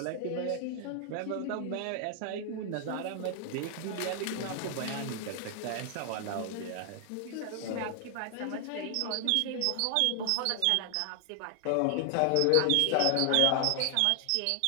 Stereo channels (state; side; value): different; both; correlation 0.00